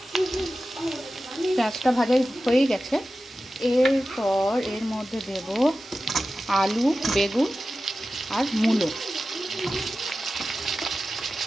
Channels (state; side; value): normal; both; correlation 0.94